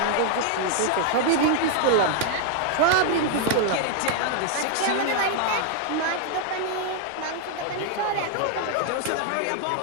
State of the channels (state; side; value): different; both; correlation 0.00